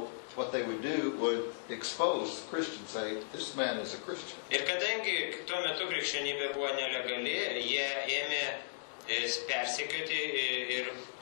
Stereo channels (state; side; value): silent; right; digital silence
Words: what they would do would expose the Christian, say, this man is a Christian. Ir kadangi tuo metu krikščionybė buvo nelegali, jie ėmė persekioti ir